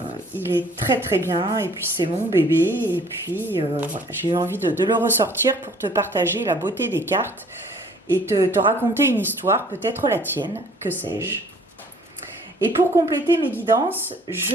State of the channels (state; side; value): normal; both; correlation 0.56